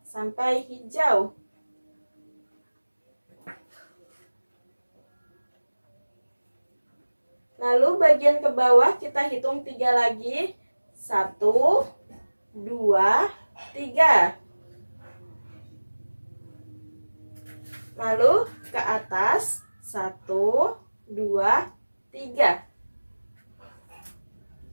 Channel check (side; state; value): both; inverted; correlation -1.00